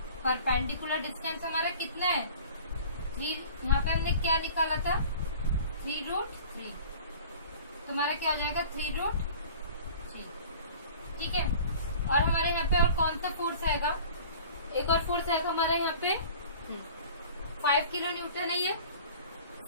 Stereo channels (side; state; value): both; inverted; correlation -0.44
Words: परपेंडिकुलर डिस्टेंस हमारा कितना है 3, यहाँ पे हमने क्या निकाला था 3√3, तो हमारा क्या हो जाएगा 3√3। ठीक है, और हमारे यहाँ पे और कौन सा फोर्स आएगा, एक और फोर्स आएगा हमारे यहाँ पे 5 किलो न्यूटन है, ये